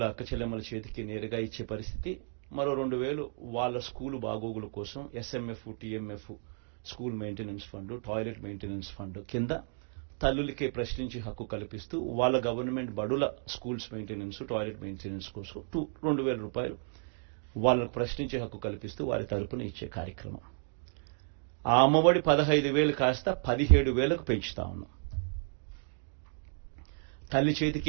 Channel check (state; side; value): silent; left; 56 dB below the other